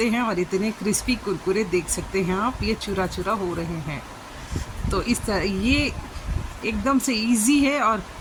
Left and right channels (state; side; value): identical; both; correlation 1.00